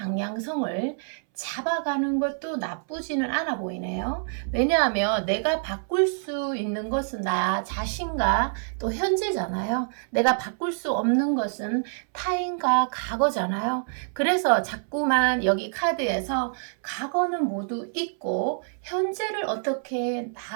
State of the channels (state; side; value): silent; left; 61 dB below the other